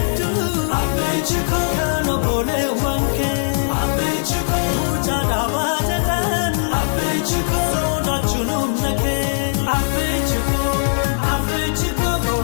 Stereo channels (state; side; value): silent; right; 63 dB below the other